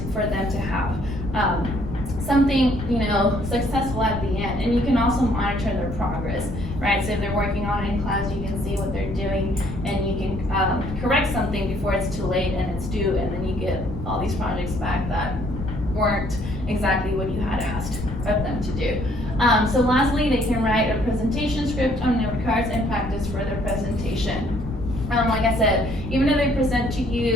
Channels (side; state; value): left; noise; rumble, 8 dB below the sound